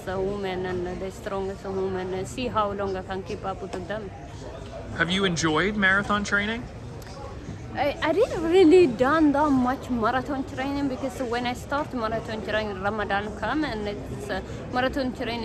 woman and the strongest woman and see how long I can keep up with them. Have you enjoyed marathon training? I didn't really done that much marathon training because when I start marathon training, Ramadan come, and it's marathon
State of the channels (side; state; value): both; identical; correlation 1.00